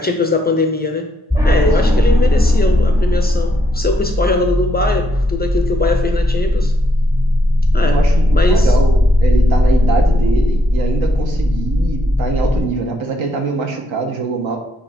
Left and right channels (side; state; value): both; normal; correlation 0.75